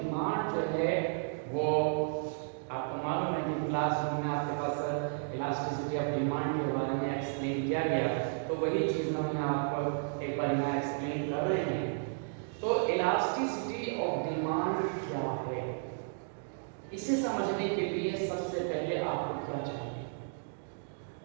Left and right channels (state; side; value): silent; left; digital silence